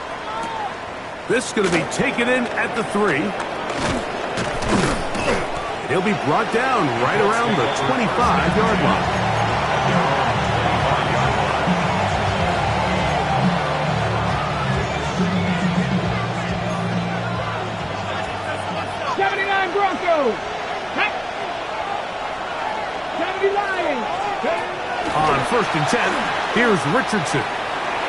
This is going to be taken in at the 3. And he'll be brought down right around the 25-yard line. Broncos. 70 Lions. On 1st and 10, here's Richardson.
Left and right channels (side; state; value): both; identical; correlation 1.00